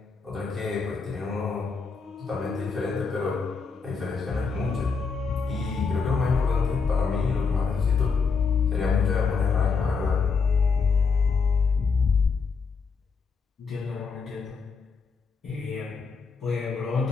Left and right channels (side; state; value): right; quieter; 5.1 dB